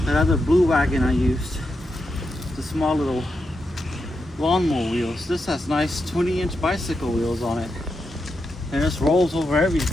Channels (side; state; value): both; normal; correlation 0.85